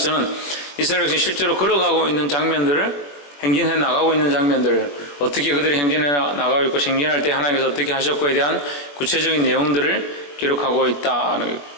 이스라엘 백성이 실제로 걸어가고 있는 장면들을 행진해 나가고 있는 장면들을 어떻게 그들이 행진해 나가고 있고 행진할 때 하나님께서 어떻게 하셨고에 대한 구체적인 내용들을 기록하고 있다는 거예요.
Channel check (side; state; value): right; late; 21 ms